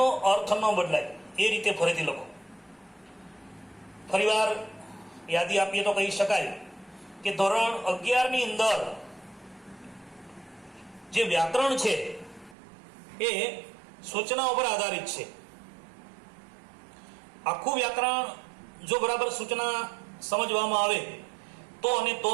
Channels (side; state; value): left; drops out; at 12.6 s